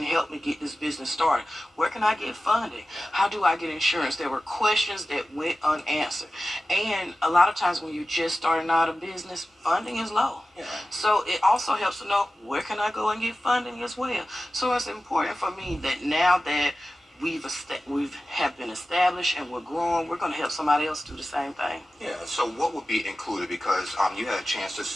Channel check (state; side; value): normal; both; correlation 0.95